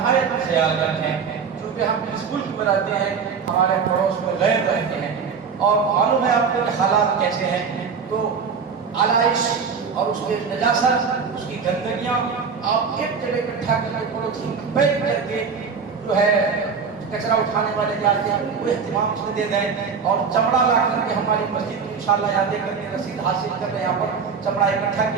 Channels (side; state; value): left; quieter; 5.9 dB